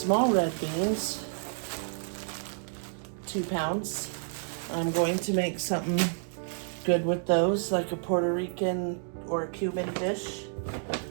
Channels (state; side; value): silent; left; digital silence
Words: red beans, 2 pounds. I'm going to make something good with those, like a Puerto Rican or Cuban dish.